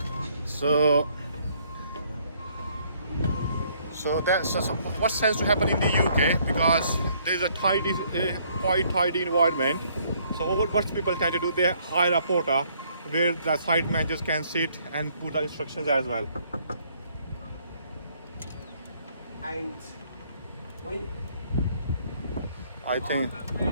So that's what tends to happen in the UK, because there's a quite tidy environment. So what people tend to do, they hire a porter where the site managers can sit and put the instructions as well. And I think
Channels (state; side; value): inverted; both; correlation -0.65